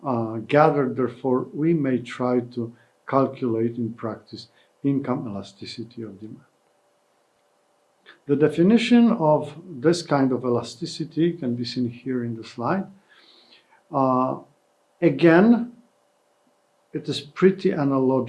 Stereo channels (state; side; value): identical; both; correlation 1.00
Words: gathered. Therefore, we may try to calculate in practice income elasticity of demand. The definition of this kind of elasticity can be seen here in the slide. Again, it is pretty